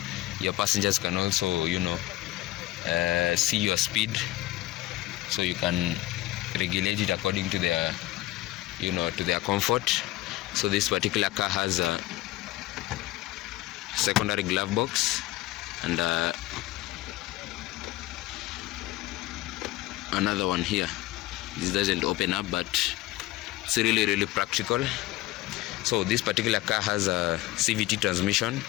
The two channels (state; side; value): quieter; right; 16.8 dB